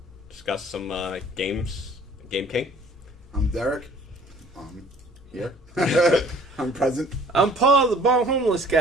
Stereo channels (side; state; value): both; normal; correlation 0.53